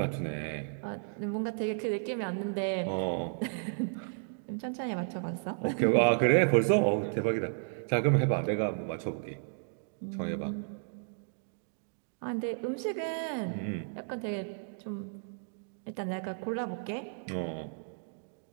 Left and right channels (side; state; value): left; silent; digital silence